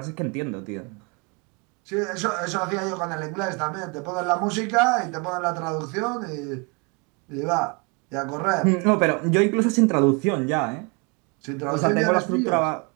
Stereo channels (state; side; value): quieter; left; 31.1 dB